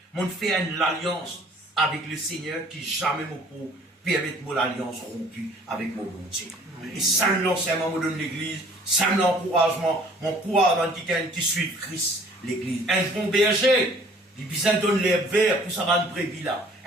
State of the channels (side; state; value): both; normal; correlation 0.54